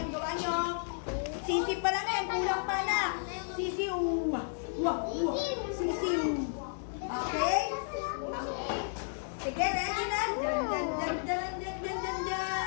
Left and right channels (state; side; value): silent; right; digital silence